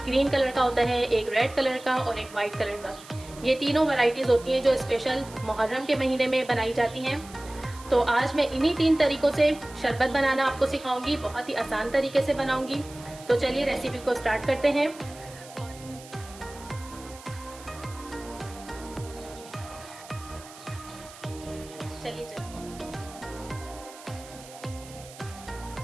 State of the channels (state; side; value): noise; right; hiss, 18 dB below the sound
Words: ग्रीन कलर का होता है, एक रेड कलर का और एक वाइट कलर का। ये तीनों वैरायटीज़ होती हैं जो स्पेशल मुहर्रम के महीने में बनाई जाती हैं। तो आज मैं इन्हीं 3 तरीक़ों से शरबत बनाना आपको सिखाऊंगी, बहुत ही आसान तरीके से बनाऊंगी। तो चलिए रेसिपी को स्टार्ट करते हैं। चलिए